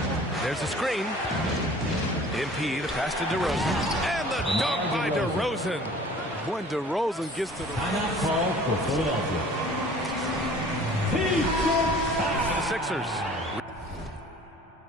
There's a screen. MP, the pass to DeRozan. And the dunk by DeRozan. When DeRozan gets to the... Timeout call for Philadelphia. The Sixers.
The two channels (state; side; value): normal; both; correlation 0.49